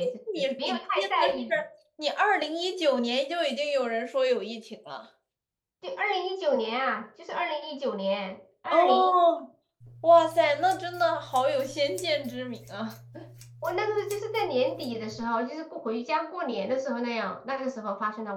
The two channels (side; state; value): both; identical; correlation 1.00